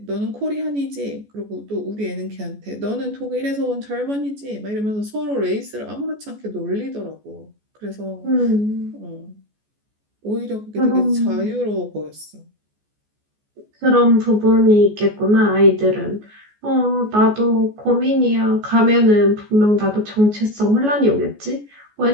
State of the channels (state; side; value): late; left; 14 ms